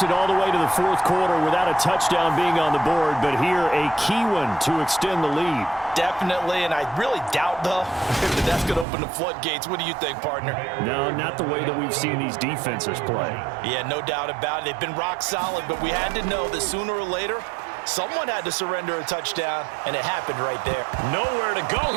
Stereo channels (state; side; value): drops out; left; at 8.8 s